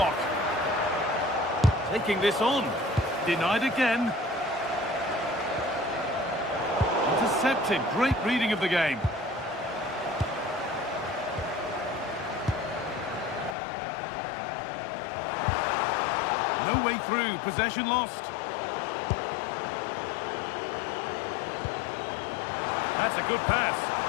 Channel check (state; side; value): drops out; right; at 13.6 s